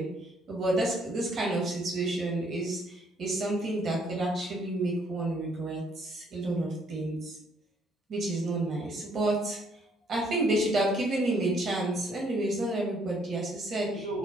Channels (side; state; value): both; normal; correlation 0.67